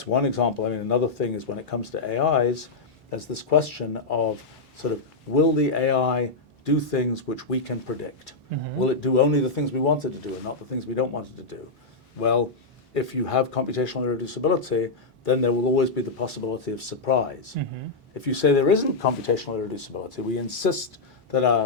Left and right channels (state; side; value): quieter; right; 3.6 dB